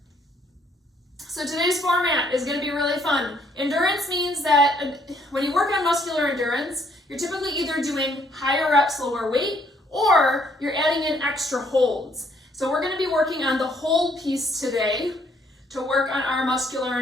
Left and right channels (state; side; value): normal; both; correlation 0.67